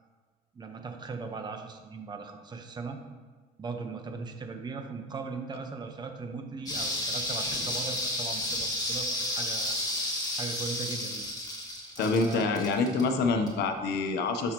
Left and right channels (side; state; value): both; normal; correlation 0.30